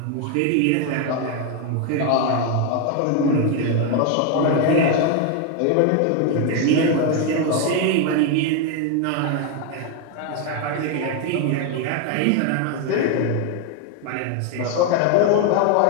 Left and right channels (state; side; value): different; both; correlation 0.01